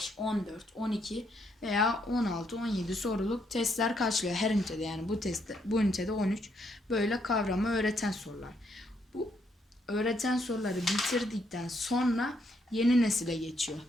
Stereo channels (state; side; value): normal; both; correlation 0.74